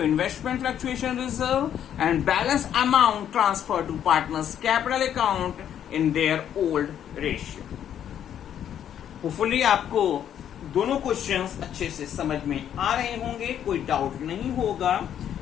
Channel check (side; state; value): right; quieter; 9.8 dB